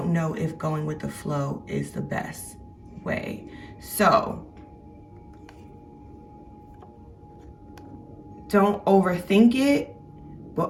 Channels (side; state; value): both; identical; correlation 1.00